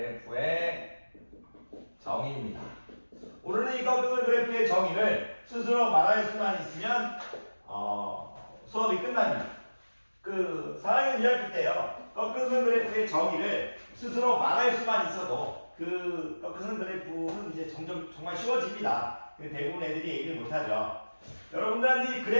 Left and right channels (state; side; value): inverted; both; correlation -1.00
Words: 정의입니다. 오늘은 이 꺾은선 그래프의 정의를 스스로 말할 수만 있으면 수업이 끝납니다. 그 4학년 2학기 때요. 꺾은선 그래프의 정의를 스스로 말할 수만 있어도 그 꺾은선 그래프는 이제 점점 정말 쉬워집니다. 대부분 애들이 얘기를 못하죠. 여러분들한테 이